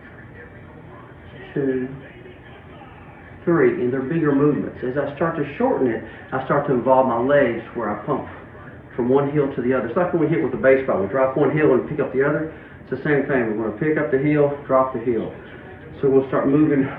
2, 3. And they're bigger movements. As I start to shorten it, I start to involve my legs where I pump from one heel to the other. It's like when we hit with the baseball. We drop one heel and pick up the other. It's the same thing. We're going to pick up the heel, drop the heel. So we'll start moving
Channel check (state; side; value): identical; both; correlation 1.00